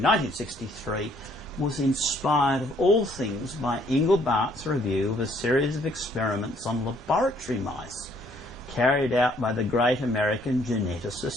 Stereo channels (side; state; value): both; normal; correlation 0.64